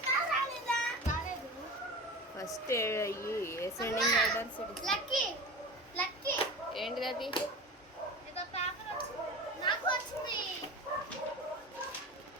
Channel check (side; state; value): both; normal; correlation 0.32